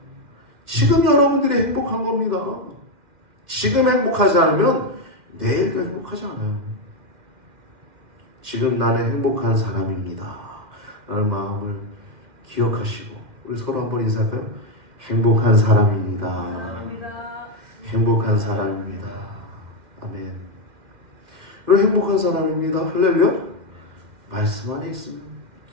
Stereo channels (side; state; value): left; late; 2.1 ms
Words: 지금 여러분들이 행복한 겁니다. 지금 행복하지 않으면 내일도 행복하지 않아요. 지금 나는 행복한 사람입니다 라는 마음을 기억하시고 우리 서로 한번 인사할까요? 행복한 사람입니다. 행복한 사람입니다. 아멘. 그리고 행복한 사람입니다. 할렐루야. 말씀 안에 있으면,